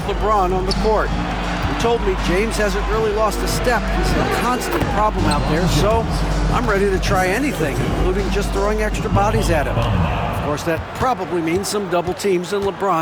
LeBron on the court. He told me James hasn't really lost a step. He's a constant problem out there, so I'm ready to try anything, including just throwing extra bodies at him. Of course, that probably means some double teams in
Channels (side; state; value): both; identical; correlation 1.00